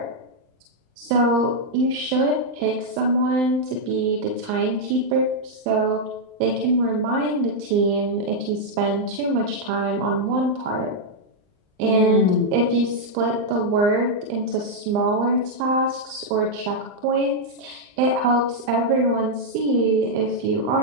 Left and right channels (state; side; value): late; left; 39 ms